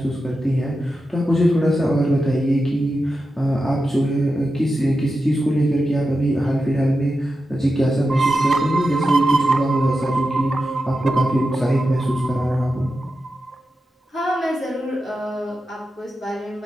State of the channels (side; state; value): both; normal; correlation 0.90